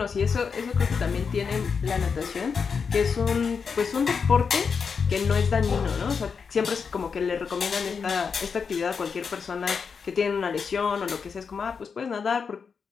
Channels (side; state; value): right; quieter; 5.8 dB